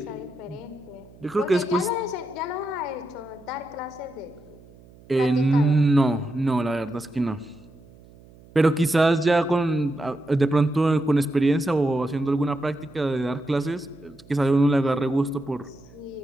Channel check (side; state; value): right; noise; hum, 24 dB below the sound